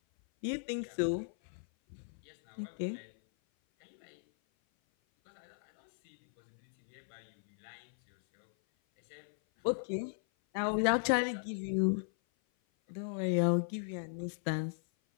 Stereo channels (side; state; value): right; silent; 54 dB below the other